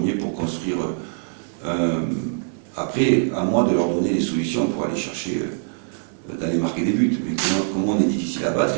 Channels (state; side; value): silent; left; 63 dB below the other